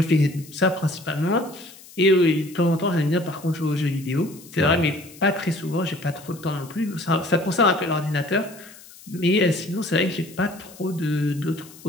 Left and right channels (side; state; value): left; noise; hiss, 21 dB below the sound